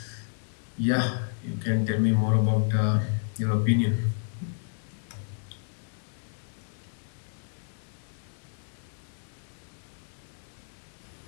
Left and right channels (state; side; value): silent; right; digital silence